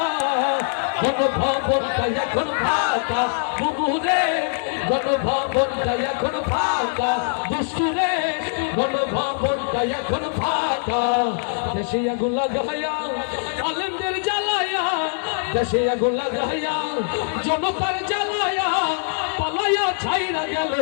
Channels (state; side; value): silent; right; digital silence